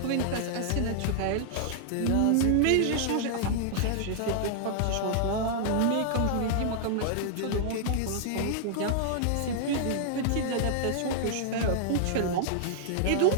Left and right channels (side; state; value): both; different; correlation -0.01